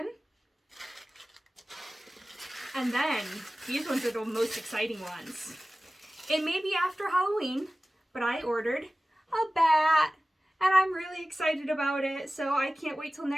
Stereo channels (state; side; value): normal; both; correlation 0.96